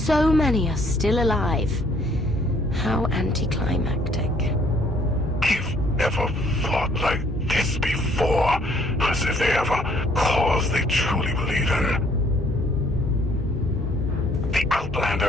many are still alive. How anticlimactic. You've never fought like this before, as if they have a cause they truly believe in. The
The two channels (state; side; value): normal; both; correlation 0.63